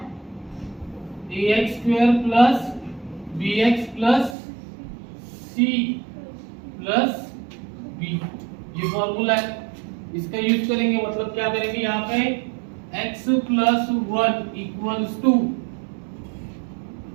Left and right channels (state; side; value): drops out; left; at 4.4 s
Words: ax square plus bx plus c plus b। ये फॉर्मूला है, इसका यूज करेंगे। मतलब क्या करेंगे यहाँ पे, x plus 1 equals to